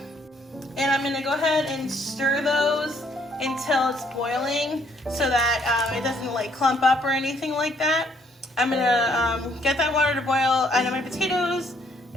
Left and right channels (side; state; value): both; normal; correlation 0.66